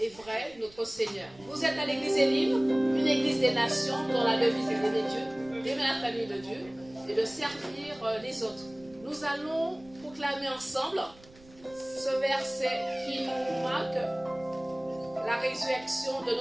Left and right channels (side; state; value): right; noise; rumble, 24 dB below the sound